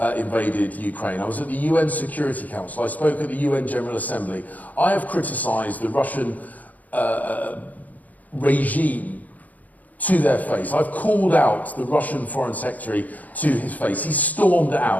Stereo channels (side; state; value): right; late; 0.078 ms